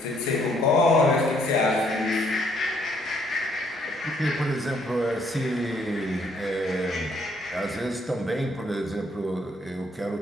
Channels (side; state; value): both; normal; correlation 0.67